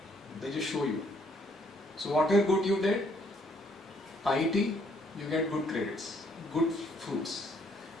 They just show you. So whatever good you did, piety, you get good credits, good fruits.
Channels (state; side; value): normal; both; correlation 0.67